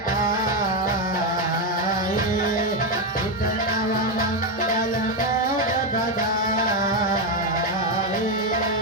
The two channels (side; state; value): both; normal; correlation 0.07